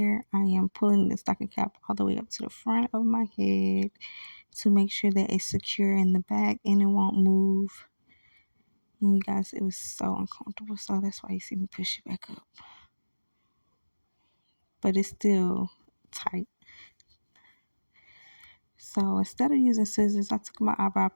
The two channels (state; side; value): inverted; both; correlation -1.00